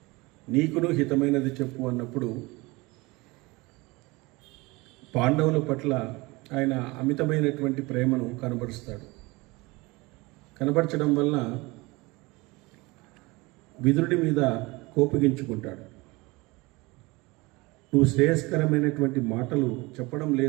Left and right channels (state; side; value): quieter; left; 23.6 dB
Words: నీకును హితమైనది చెప్పు అన్నప్పుడు పాండవుల పట్ల ఆయన అమితమైనటువంటి ప్రేమను కనబరుస్తాడు. కనబరచడం వలన విదురుడి మీద కోపగించుకుంటాడు. నువ్వు శ్రేయస్కరమైనటువంటి మాటలు చెప్పడం